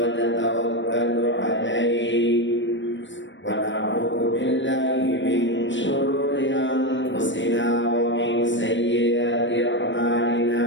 natawakkalu alayhi wa na'udzu billahi min shururi anfusina wa min sayyiati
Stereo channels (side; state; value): right; late; 0.54 ms